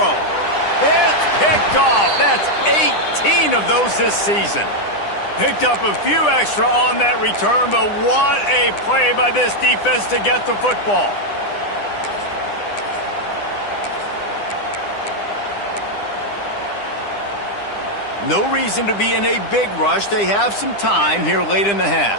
It's picked off. That's 18 of those this season. Picked up a few extra on that return, but what a play by this defense to get the football. No reason to be in a big rush. They have some time here late in the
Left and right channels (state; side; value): late; right; 9.9 ms